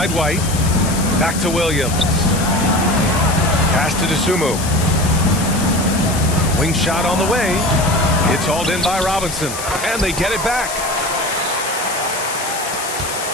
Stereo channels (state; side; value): noise; left; hiss, 8 dB below the sound